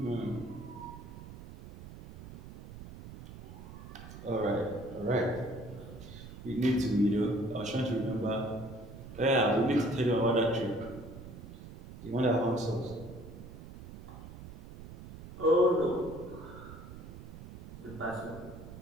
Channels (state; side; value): noise; right; rumble, 14 dB below the sound